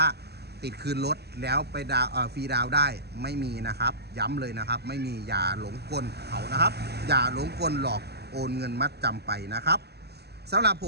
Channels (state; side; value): late; left; 0.47 ms